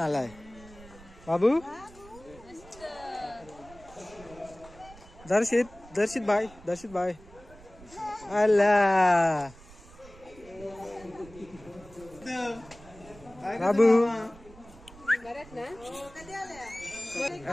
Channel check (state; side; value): noise; right; rumble, 21 dB below the sound